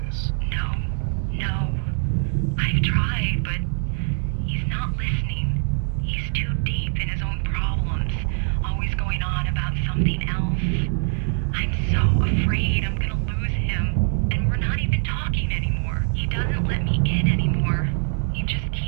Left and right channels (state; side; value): silent; left; 62 dB below the other